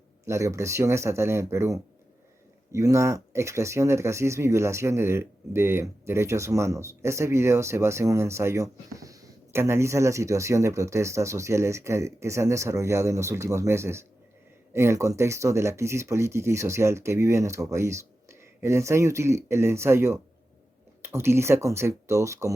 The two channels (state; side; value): normal; both; correlation 0.92